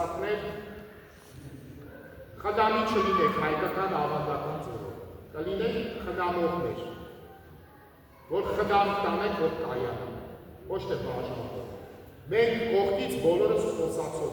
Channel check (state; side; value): identical; both; correlation 1.00